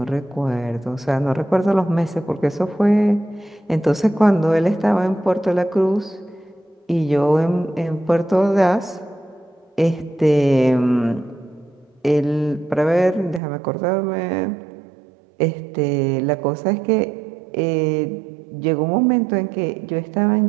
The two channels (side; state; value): left; drops out; at 13.4 s